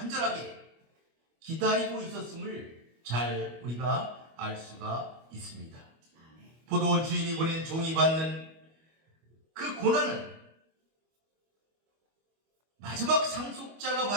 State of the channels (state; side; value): late; left; 25 ms